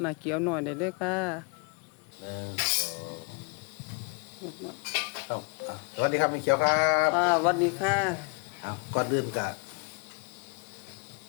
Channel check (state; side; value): quieter; right; 32.4 dB